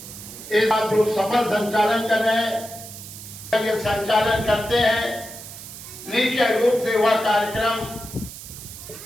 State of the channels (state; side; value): noise; right; hiss, 13 dB below the sound